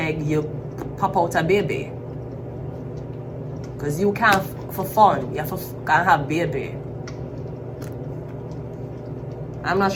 you pop out a baby. Because you can't, for fun, you can't have baby. I'm not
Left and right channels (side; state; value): both; identical; correlation 1.00